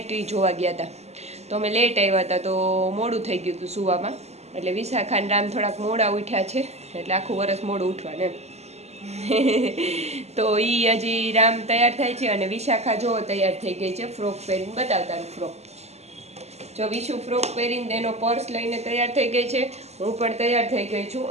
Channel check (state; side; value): late; left; 0.31 ms